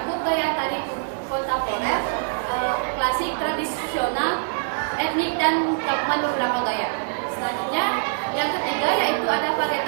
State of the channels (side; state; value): left; silent; 63 dB below the other